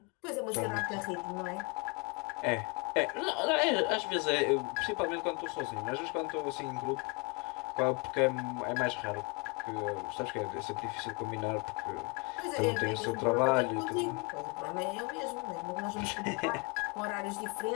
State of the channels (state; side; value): quieter; right; 31.5 dB